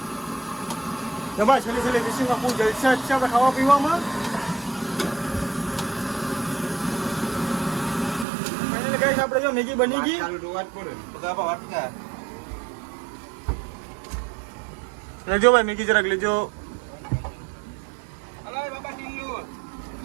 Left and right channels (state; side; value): drops out; left; at 8.2 s